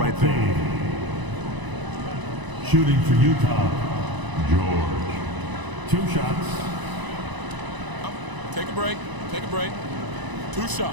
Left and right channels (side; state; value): left; late; 1.0 ms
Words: there. Shooting for Utah, George. 2 shots. Take a break. Take a break. 2